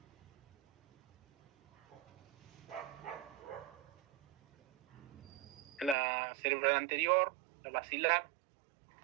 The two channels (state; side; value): drops out; left; at 6.0 s